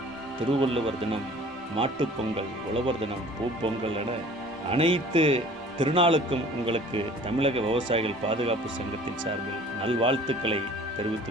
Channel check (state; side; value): normal; both; correlation 0.48